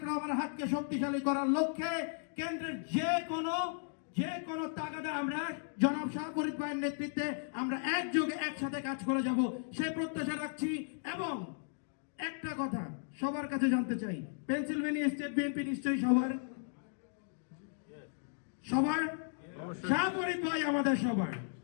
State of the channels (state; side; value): silent; right; digital silence